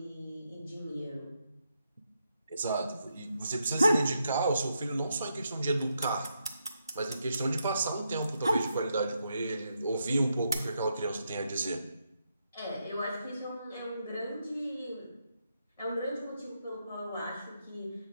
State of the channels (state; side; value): inverted; both; correlation -0.82